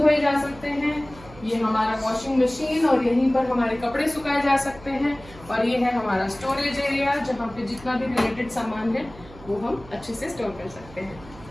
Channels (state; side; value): noise; right; hum, 19 dB below the sound